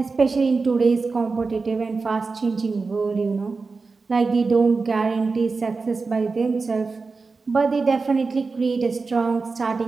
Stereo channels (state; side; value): quieter; left; 4.2 dB